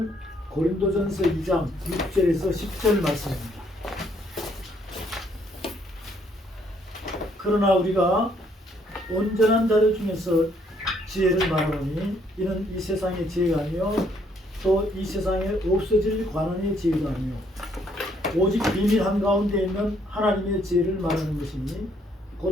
고린도전서 2장 6절에서 10절 말씀입니다. 그러나 우리가 온전한 자들 중에서 지혜를 말하노니 이는 이 세상의 지혜가 아니요 또 이 세상에 없어질 관원의 지혜가 아니요 오직 비밀 한가운데 있는 하나님의 지혜를 말하는 것이니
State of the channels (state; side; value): normal; both; correlation 0.68